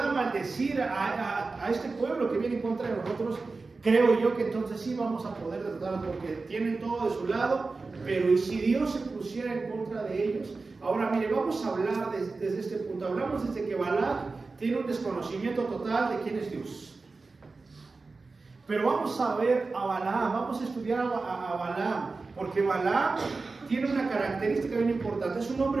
maldecir a este pueblo que viene en contra de nosotros, creo yo que entonces sí vamos a poder derrotarlos, porque tienen todo de su lado. Pero ¿y si Dios se pusiera en contra de ellos? Ahora mire, vamos a hablar desde este punto. Hablamos desde que Balac tiene un desconocimiento total de quién es Dios. Pero vamos a ver a Balaam, vamos a estudiar a Balaam, porque Balaam tiene una característica bien importante. Es un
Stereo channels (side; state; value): left; quieter; 3.9 dB